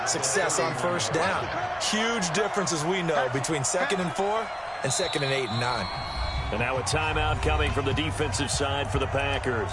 success on first down. Huge difference, as we know, between 2nd and 4 and 2nd and 8 and 9. And now a timeout coming from the defensive side for the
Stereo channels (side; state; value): both; identical; correlation 1.00